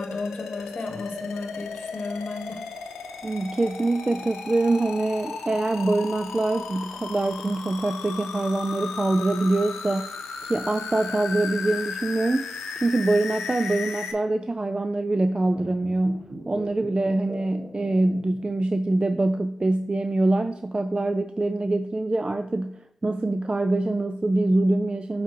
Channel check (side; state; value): both; normal; correlation 0.96